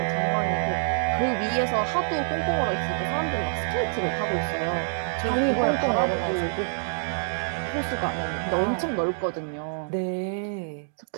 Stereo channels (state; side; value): silent; left; digital silence